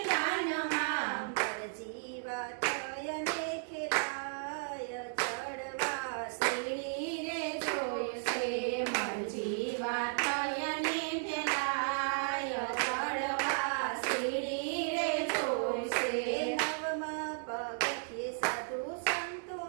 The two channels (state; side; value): silent; left; digital silence